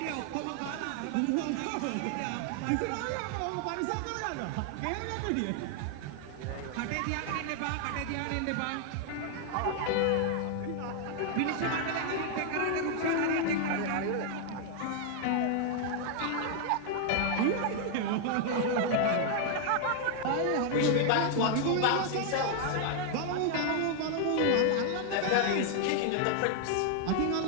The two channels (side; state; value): both; different; correlation 0.00